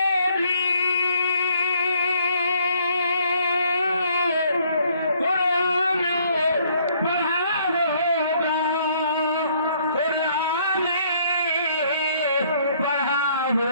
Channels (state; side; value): inverted; both; correlation -0.64